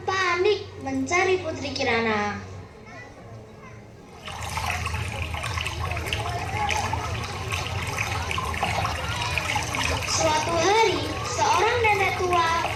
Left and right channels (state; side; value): identical; both; correlation 1.00